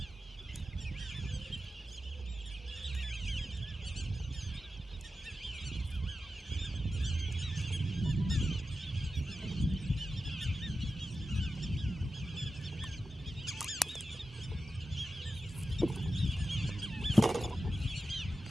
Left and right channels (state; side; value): normal; both; correlation 0.92